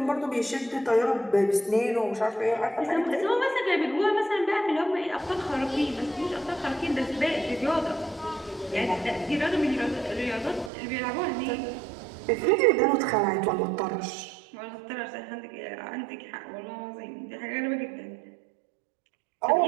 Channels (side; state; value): left; drops out; at 10.7 s